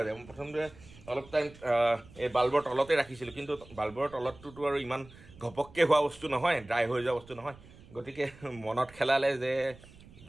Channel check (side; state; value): right; noise; rumble, 21 dB below the sound